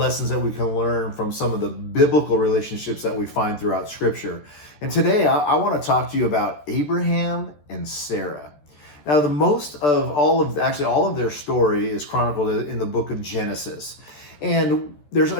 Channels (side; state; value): right; late; 14 ms